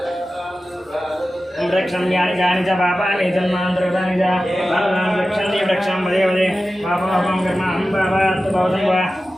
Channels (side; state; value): both; normal; correlation 0.94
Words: वृक्षं यानि च पापानि जन्मान्तरकृतानि च पापानि वृक्षन्ति वृक्षं वदे वदे पापमहं कर्माहं पापात् भवतं वा